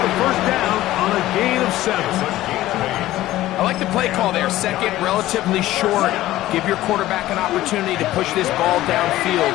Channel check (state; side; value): quieter; right; 15.4 dB